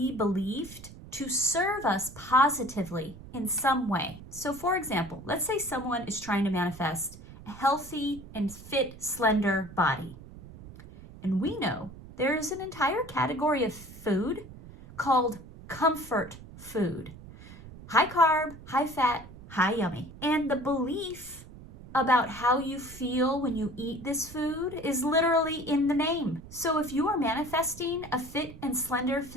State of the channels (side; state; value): right; noise; rumble, 17 dB below the sound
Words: believed to serve us positively in some way. So for example, let's say someone is trying to manifest a healthy and fit, slender body. And we know there is an entire category of food called comfort food. High carb, high fat, high yummy. And the belief about how you feel when you eat this food is literally in the name. So if you are manifesting a fit and slender